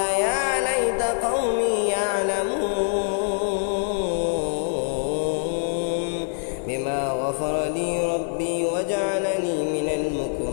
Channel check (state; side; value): silent; right; 59 dB below the other